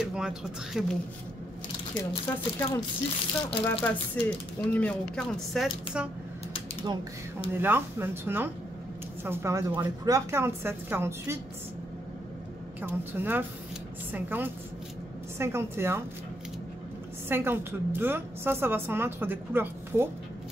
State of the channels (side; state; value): both; normal; correlation 0.77